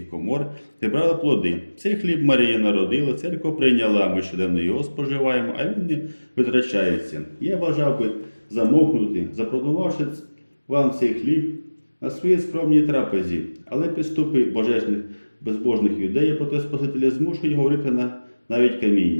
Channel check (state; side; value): inverted; both; correlation -1.00